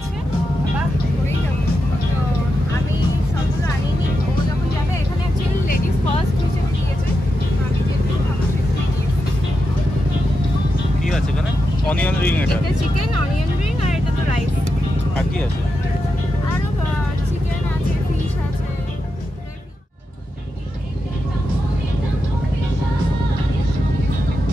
বাবা পড়েই যাবো। তো আমি সবগুলো আনিনি, ও যখন যাবে। এখানে অ্যাকচুয়ালি লেডিস ফার্স্ট হিসেবে দিয়েছে। আমি যেহেতু আমার কি আছে এখানে? অনিয়ন রিং, এটা চিকেন অনিয়ন রিং, আর এটা তো রাইস। আর কি আছে? আরো চিকেন আছে, ফিশ আছে।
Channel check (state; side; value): normal; both; correlation 0.87